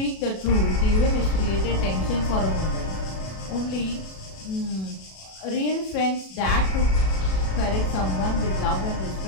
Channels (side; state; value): right; late; 37 ms